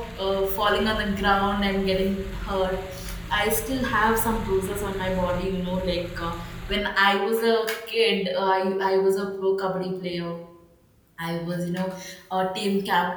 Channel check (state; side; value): identical; both; correlation 1.00